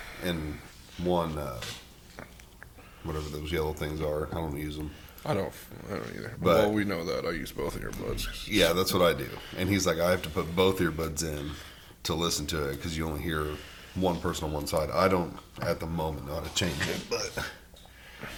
and one, whatever those yellow things are. I don't use them. I don't either. But well, we know that. I use both earbuds. Yeah, that's what I do. And he's like, I have to put both earbuds in to listen to it because you only hear one person on one side. I don't, at the moment, know how to change it, but...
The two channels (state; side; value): identical; both; correlation 1.00